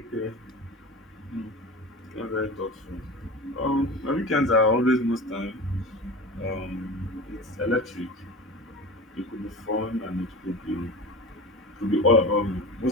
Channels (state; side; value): normal; both; correlation 0.31